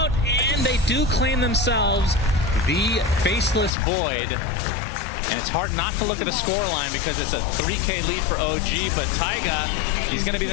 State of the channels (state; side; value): drops out; right; at 3.7 s